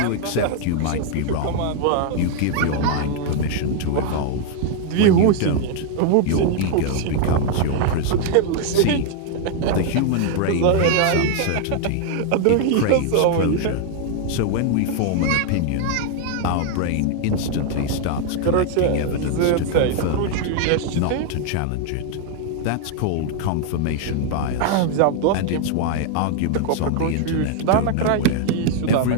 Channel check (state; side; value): different; both; correlation 0.00